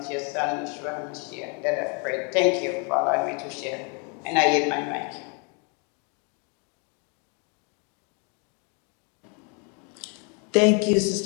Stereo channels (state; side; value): quieter; right; 36.0 dB